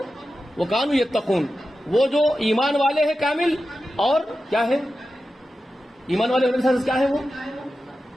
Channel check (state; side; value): normal; both; correlation 0.92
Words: وکانوا یتقون. وہ جو ایمان والے ہیں کامل, اور کیا ہے ایمان والے ہونے سے کیا ہے؟ وہ